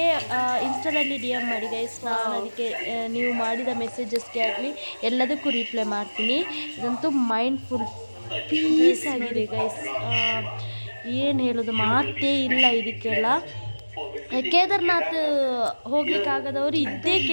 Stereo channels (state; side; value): inverted; both; correlation -1.00